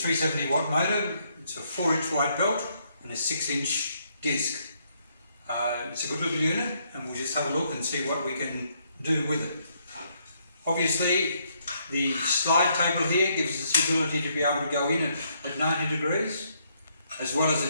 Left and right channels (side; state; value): both; inverted; correlation -0.72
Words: watt motor, it's a 4-inch wide belt and a 6-inch disc. It's a good little unit and we'll just have a look and see what we can do with it. Obviously the slide table here gives us the ability to be able to go in at 90 degrees as well as